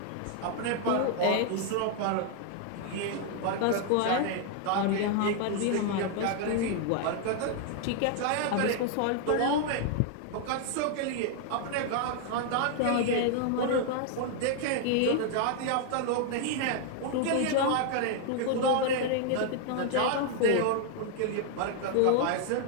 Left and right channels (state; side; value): different; both; correlation 0.00